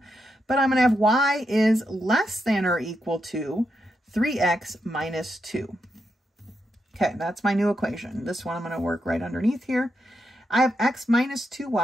But I'm going to have y is less than or equal to 3x minus 2. Okay, that's my new equation. This one I'm going to work right underneath here. I have x minus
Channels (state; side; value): normal; both; correlation 0.84